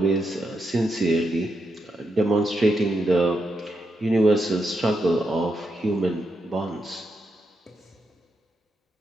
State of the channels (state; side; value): normal; both; correlation 0.83